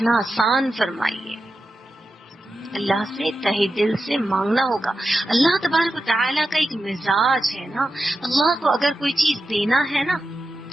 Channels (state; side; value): normal; both; correlation 0.91